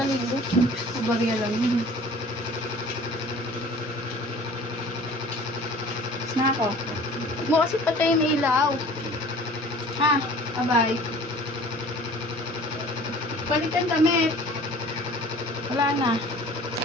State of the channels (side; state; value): both; normal; correlation 0.46